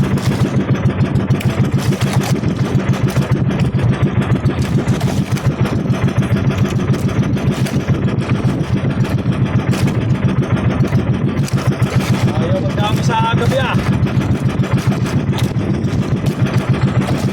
Ayaw magdami sa gabi ah.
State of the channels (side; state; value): both; identical; correlation 1.00